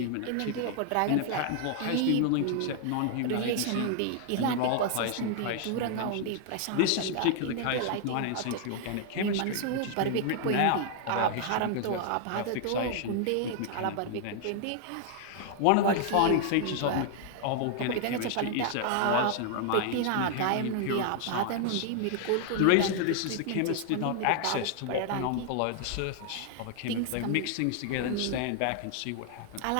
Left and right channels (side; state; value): both; different; correlation 0.00